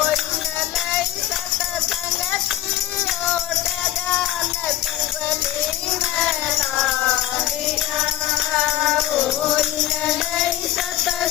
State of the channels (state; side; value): quieter; right; 13.4 dB